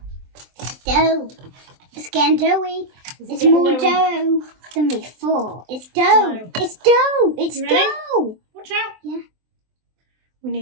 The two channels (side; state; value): left; late; 23 ms